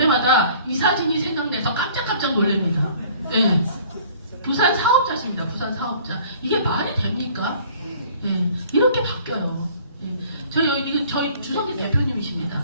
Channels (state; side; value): inverted; both; correlation -0.52